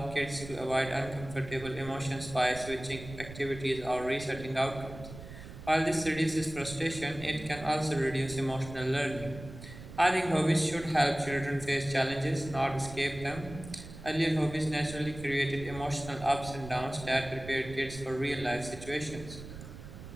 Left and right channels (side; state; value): right; noise; rumble, 13 dB below the sound